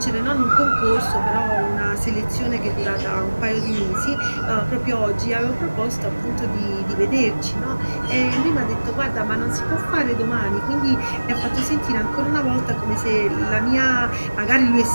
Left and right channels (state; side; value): inverted; both; correlation -1.00